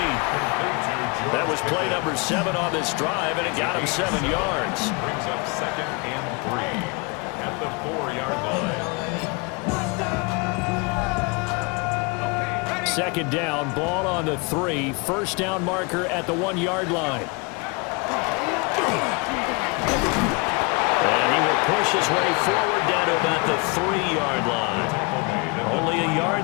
That was play number 7 on this drive, and it got him 7 yards. Brings up 2nd and 3 at the 4-yard line. Second down, ball on the 3. First down marker at the 1-yard line. And he will push his way forward down to about the 3-yard line. Only a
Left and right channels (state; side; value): quieter; right; 30.0 dB